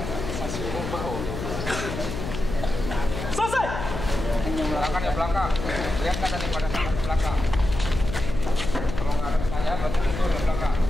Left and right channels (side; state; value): left; noise; hum, 6 dB below the sound